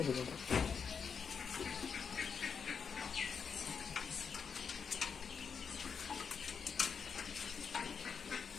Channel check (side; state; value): right; quieter; 6.2 dB